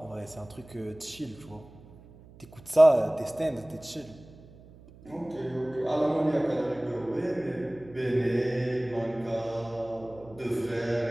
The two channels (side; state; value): right; noise; hum, 22 dB below the sound